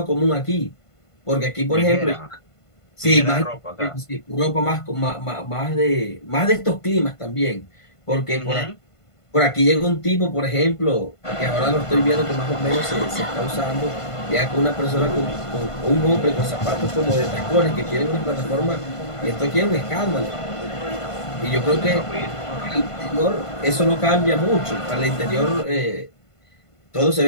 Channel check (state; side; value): late; right; 1.5 ms